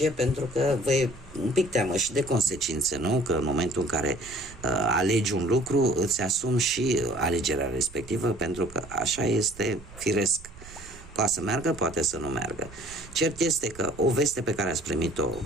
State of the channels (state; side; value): noise; right; rumble, 19 dB below the sound